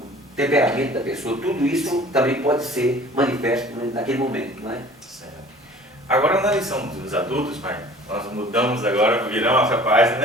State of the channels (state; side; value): normal; both; correlation 0.47